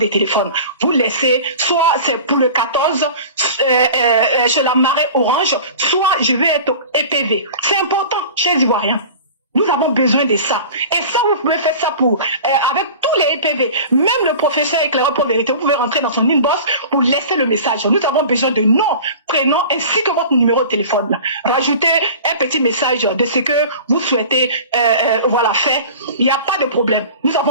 téléphone. Vous laissez, soit c'est pour le 14, chez la marée orange, soit je vais être EPV. C'est important, chers Ivoiriens. Nous avons besoin de ça. Et ça, vous pouvez faire ça avec tous les EPV. Même le professeur éclaireur pour vérité, vous pouvez rentrer dans son inbox pour laisser le message. Nous avons besoin de nom, prénom, ainsi que votre numéro de téléphone. Rajoutez un petit message de ce que vous souhaitez faire. Il n'y a pas de problème. Nous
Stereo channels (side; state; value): both; inverted; correlation -0.38